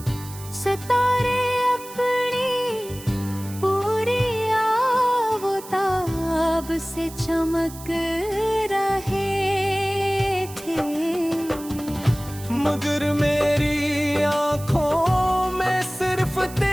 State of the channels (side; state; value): right; noise; hiss, 16 dB below the sound